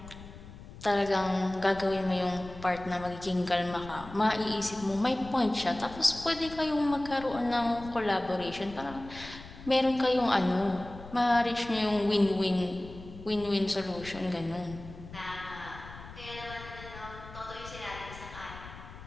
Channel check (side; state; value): left; noise; rumble, 15 dB below the sound